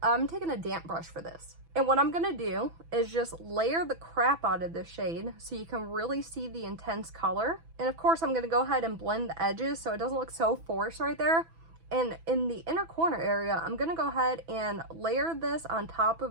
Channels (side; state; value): left; late; 6.1 ms